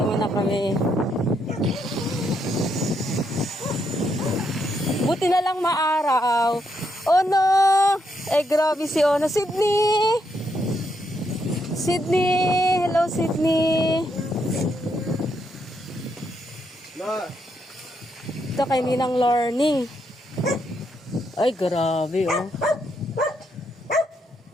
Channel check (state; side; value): normal; both; correlation 0.78